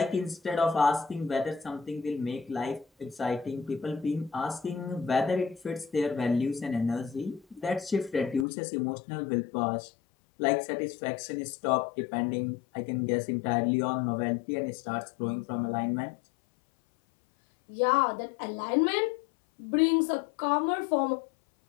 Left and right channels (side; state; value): right; drops out; at 8.5 s